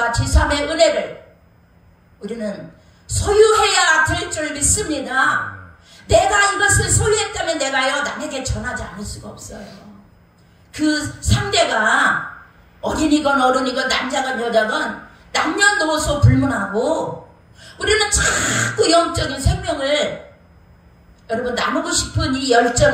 지삼의 은혜를 우리는 소유해야 될 줄 믿습니다. 내가 이것을 소유했다면 내가요 남에게 전하지 않을 수가 없어요. 그 상대가 어린이건 어른이건 남자건 여자건 남녀노소 불문하고 우리는 자꾸 영적인 생명을 여러분 나누고 싶은 이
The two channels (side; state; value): both; identical; correlation 1.00